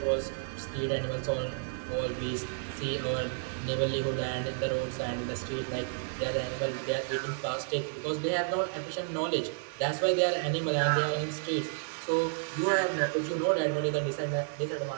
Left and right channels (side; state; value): left; silent; digital silence